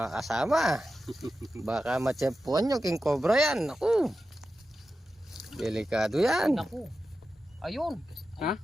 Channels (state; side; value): normal; both; correlation 0.92